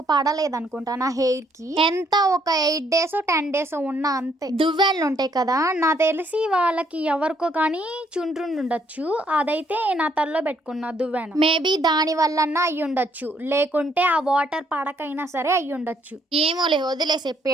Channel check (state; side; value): normal; both; correlation 0.69